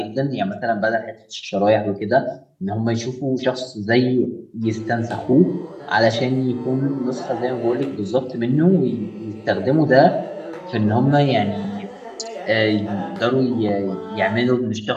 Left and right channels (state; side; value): identical; both; correlation 1.00